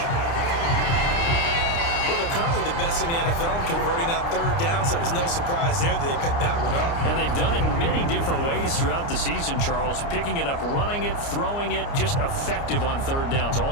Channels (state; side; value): late; right; 29 ms